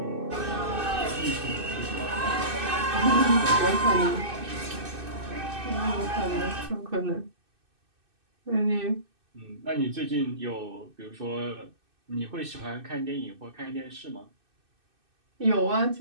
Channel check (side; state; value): left; late; 2.6 ms